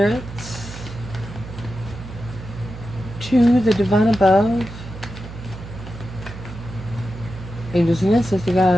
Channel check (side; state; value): right; noise; hum, 12 dB below the sound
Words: To the divine above. Angels and ancestor